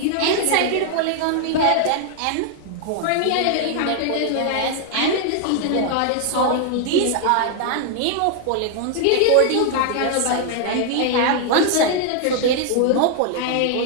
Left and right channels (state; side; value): different; both; correlation 0.00